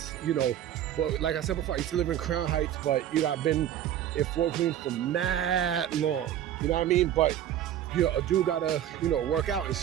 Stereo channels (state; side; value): quieter; left; 11.1 dB